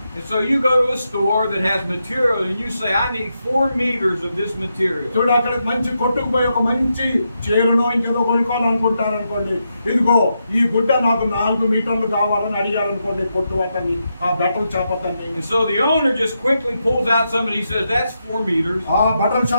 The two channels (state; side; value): inverted; both; correlation -0.84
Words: And so you go to a store that has material and you say, I need 4 meters of this material. చూడు, అక్కడ మంచి కొట్టుకు పోయి ఒక మంచి చీరనో ఇంకేదో కొనుక్కోవాలనుకుంటారు అనుకోండి, ఇదిగో ఈ గుడ్డ నాకు 4 మీటర్లు కావాలని అడిగారనుకోండి కొట్టు అతన్ని, ఆ బట్టల షాప్ అతన్ని. And so the owner just quickly pulls out something, he says, that's 4 meters. ఆ బట్టల